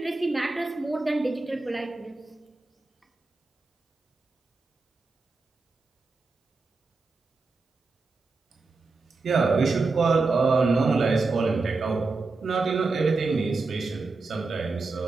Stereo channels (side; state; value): left; quieter; 3.8 dB